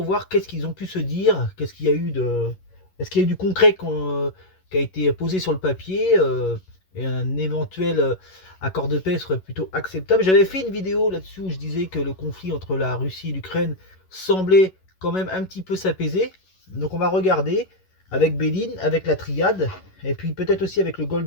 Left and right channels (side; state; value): right; late; 11 ms